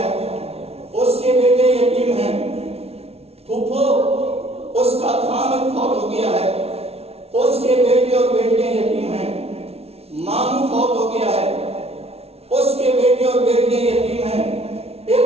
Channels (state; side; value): late; left; 0.30 ms